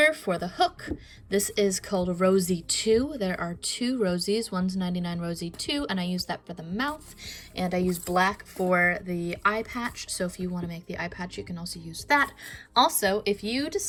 for the hook. This is called Rosey 2. There are 2 Rosies. One's 99 Rosey 2, and I use that for the mouth. And I use black for the eye patch. So if you want to make the eye patch, you can also use that. Also, if you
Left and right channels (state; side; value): identical; both; correlation 1.00